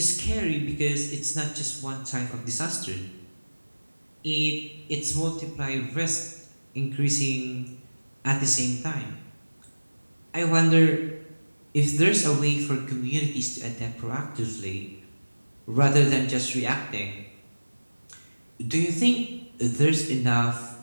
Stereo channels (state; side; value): inverted; both; correlation -1.00